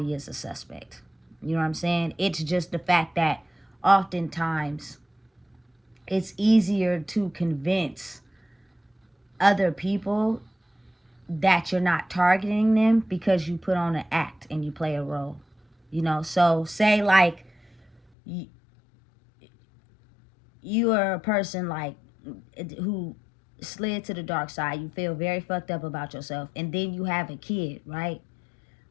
is a suspect. You know what I'm saying? It's just the fact that oftentimes it's easier to convince other people that you're not targeting them because you put on an act and you play a role. You know, so say like you are a person like who slid to the dark side. You feel very fucked up about yourself, and then you have a kid, right?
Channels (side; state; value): right; drops out; at 18.0 s